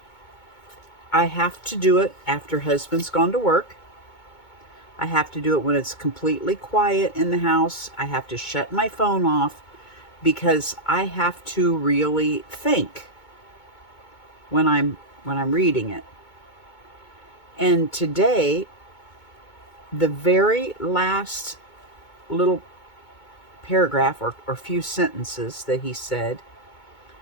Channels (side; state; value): right; late; 2.2 ms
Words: I have to do it after husband's gone to work. I have to do it when it's completely quiet in the house. I have to shut my phone off, because I have to really think when I'm when I'm reading it. And today, the very last little paragraph or few sentences that he said